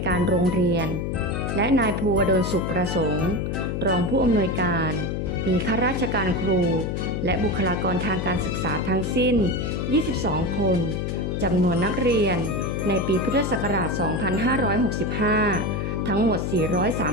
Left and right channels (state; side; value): noise; left; hum, 2 dB below the sound